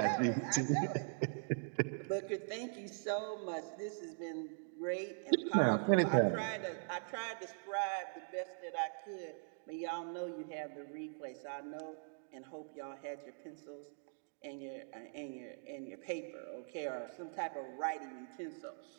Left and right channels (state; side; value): silent; left; digital silence